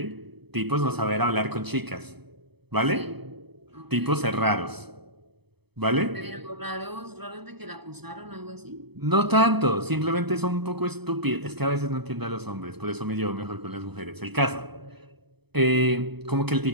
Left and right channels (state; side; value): late; left; 0.98 ms